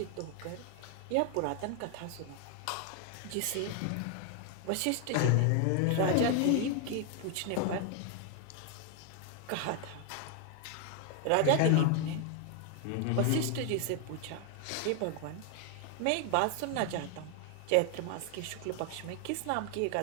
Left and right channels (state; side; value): different; both; correlation 0.00